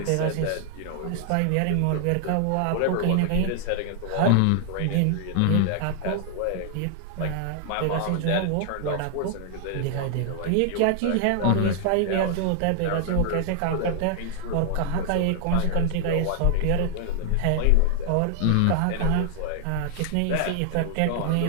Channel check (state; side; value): different; both; correlation -0.01